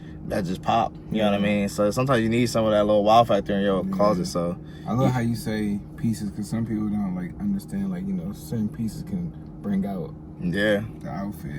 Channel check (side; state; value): both; identical; correlation 1.00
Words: pop. You know what I mean? So sometimes you need some of that little wow factor in your closet. So I love how you say pieces, because some people don't like understand like certain pieces can bring out the